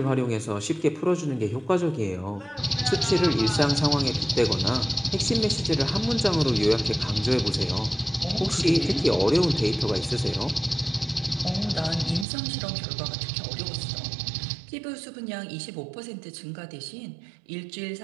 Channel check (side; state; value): left; drops out; at 12.2 s